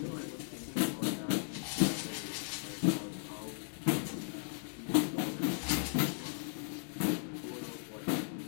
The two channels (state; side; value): silent; right; digital silence